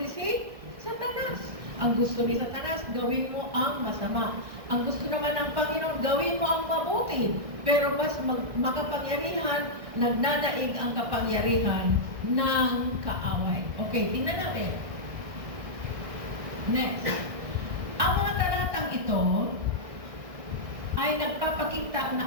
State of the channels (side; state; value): left; late; 1.6 ms